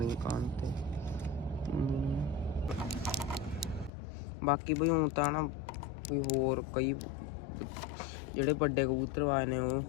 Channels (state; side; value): drops out; right; at 3.9 s